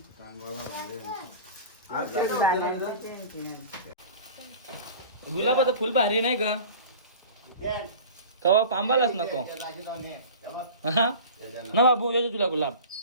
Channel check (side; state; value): both; inverted; correlation -0.38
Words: गुलाबाचं फुल भारी नाही का कवा पांबालाच नको. हा ना बाबू येतो तुला गुलाब